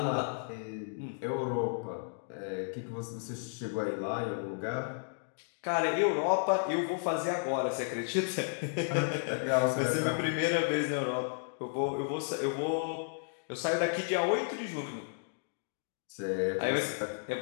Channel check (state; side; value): silent; right; digital silence